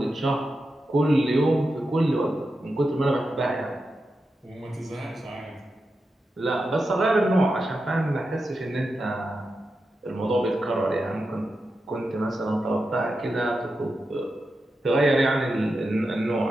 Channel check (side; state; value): both; normal; correlation 0.89